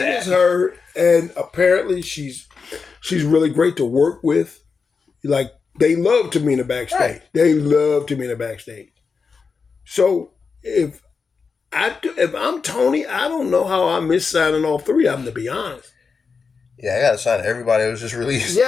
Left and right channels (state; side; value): quieter; right; 5.1 dB